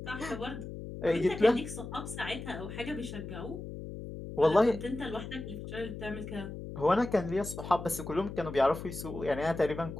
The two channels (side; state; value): left; noise; hum, 9 dB below the sound